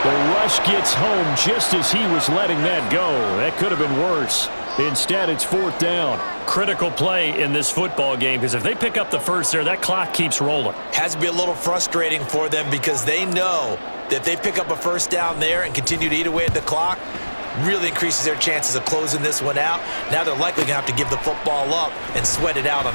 The rush gets home just as he was letting that go. That could have been worse. Instead, it's 4th down. Critical play in this football game because if they pick up the first there, that clock keeps rolling. Has to be a little frustrating for them because they know that if they pick up a 1st down there and continue to eat away at the clock, really increases their chances of closing this one out. Now they're likely going to have to give the football up and sweat it out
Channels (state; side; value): inverted; both; correlation -1.00